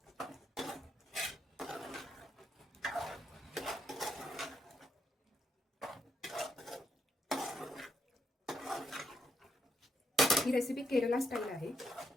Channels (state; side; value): normal; both; correlation 0.77